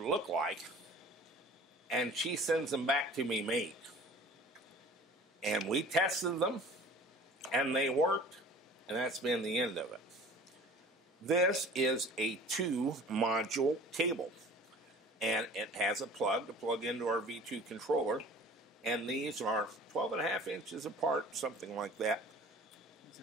look like, and she sends them back to me made. And we tested them, and they worked, and that's been the end of it. This is a 2-module cable, and it has a plug to plug into our V2 controller, and these are 12.5 inches apart, something like that.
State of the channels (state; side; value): normal; both; correlation 0.44